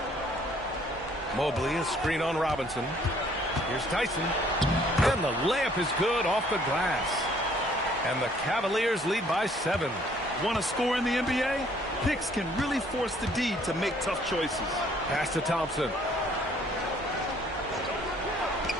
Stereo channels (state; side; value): normal; both; correlation 0.61